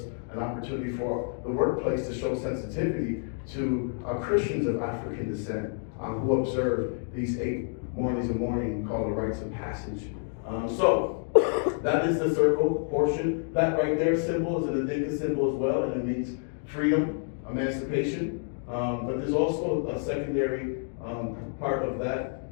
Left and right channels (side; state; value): right; silent; 59 dB below the other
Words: an opportunity for the workplace to show sensitivity to Christians of African descent who observe these 8 mornings of mourning called the rites of passage. So that is the circle portion. That right there symbol is an Adinka symbol as well, and it means freedom, emancipation. But there's also a secondary part of that.